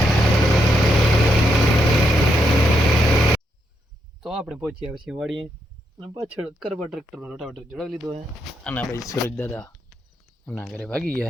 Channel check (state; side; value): normal; both; correlation 0.79